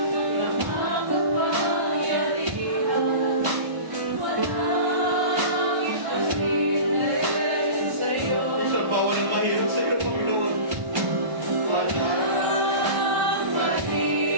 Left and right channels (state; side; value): late; left; 1.3 ms